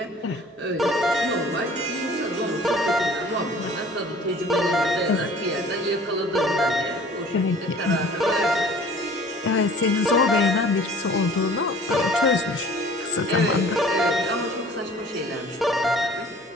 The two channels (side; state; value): both; normal; correlation 0.48